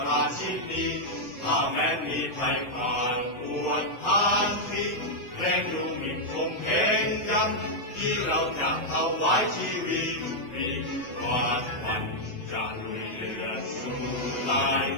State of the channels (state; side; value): late; right; 7.9 ms